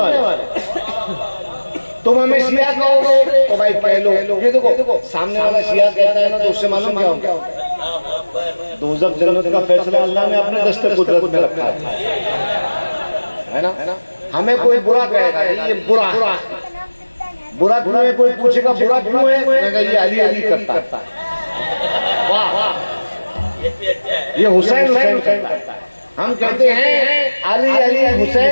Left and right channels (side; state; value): both; inverted; correlation -1.00